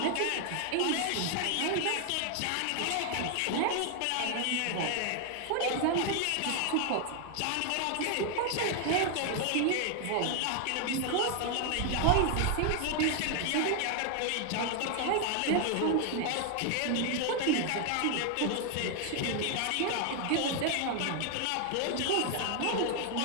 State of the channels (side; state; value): both; different; correlation 0.00